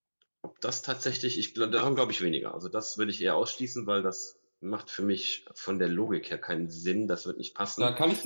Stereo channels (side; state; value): both; inverted; correlation -1.00